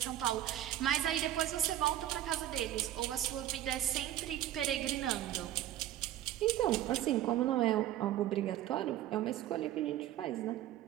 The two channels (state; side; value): quieter; left; 12.8 dB